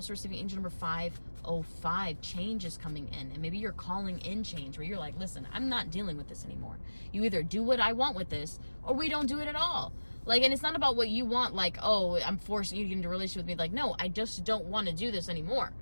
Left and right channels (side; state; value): both; inverted; correlation -1.00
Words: receiving angel number 505, change is coming in. And maybe you're calling in change, where you're like, listen, I'm not dealing with this anymore. You either do what I want with this, or we don't do it at all. Like, and it's not about what you want, like, oh, I'm forcing you to get into a relationship with me. Like, no, I just don't want to do this anymore